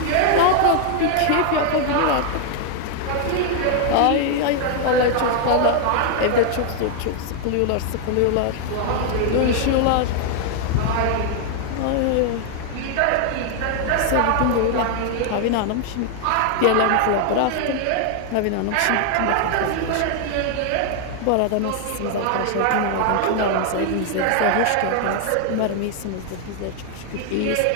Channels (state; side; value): different; both; correlation 0.00